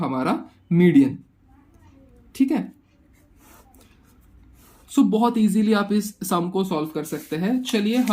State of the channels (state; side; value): identical; both; correlation 1.00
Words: मीडियन। ठीक है, सो बहुत इजीली आप इस सम को सॉल्व कर सकते हैं। चलिए